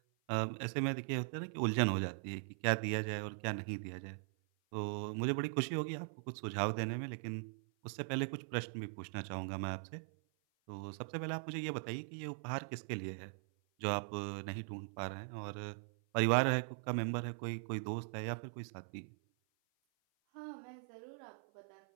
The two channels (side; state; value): left; silent; 51 dB below the other